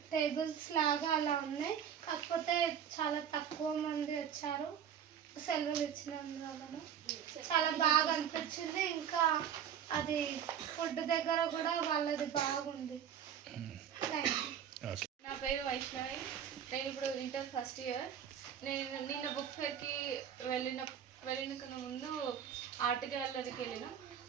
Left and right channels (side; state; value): left; quieter; 8.8 dB